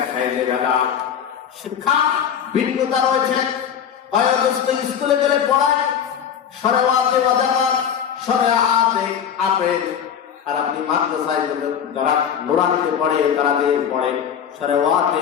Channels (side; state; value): right; quieter; 8.3 dB